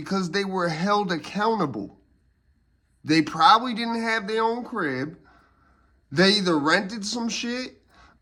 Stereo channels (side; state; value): both; identical; correlation 1.00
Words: they were held accountable. They probably didn't have their own crib. They either rented some shit,